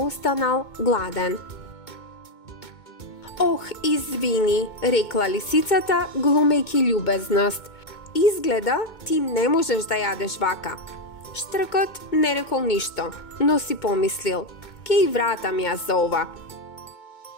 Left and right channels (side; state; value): right; late; 2.2 ms